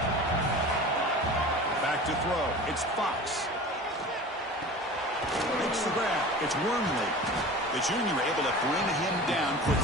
Back to throw. It's Fox. Makes the grab. It's Wormley. The junior able to bring him down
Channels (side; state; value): both; normal; correlation 0.37